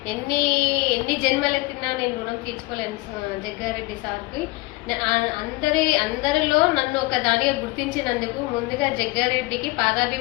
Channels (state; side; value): quieter; right; 22.6 dB